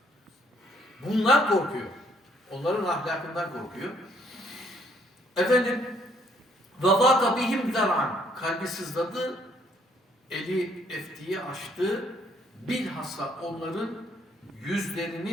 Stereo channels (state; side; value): normal; both; correlation 0.67